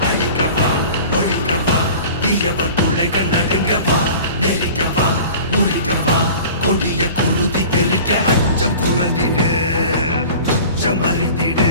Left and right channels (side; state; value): both; inverted; correlation -0.41